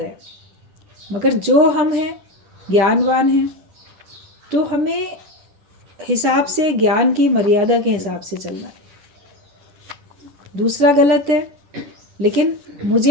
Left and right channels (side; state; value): left; late; 10 ms